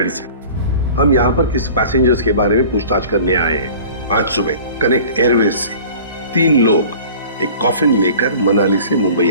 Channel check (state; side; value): inverted; both; correlation -0.44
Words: से। हम यहाँ पर किसी पैसेंजर्स के बारे में पूछताछ करने आए हैं। आज सुबह कनेक्ट एयरवेज से 3 लोग एक कॉफिन लेकर मनाली से मुंबई